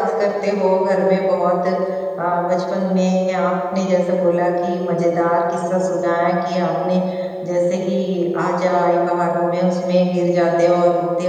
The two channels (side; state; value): both; identical; correlation 1.00